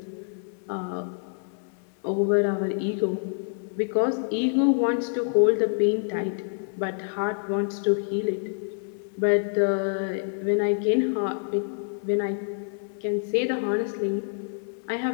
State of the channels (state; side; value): silent; right; digital silence